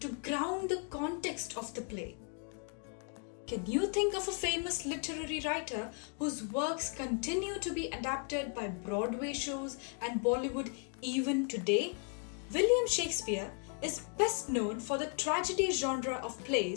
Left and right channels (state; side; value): quieter; right; 39.1 dB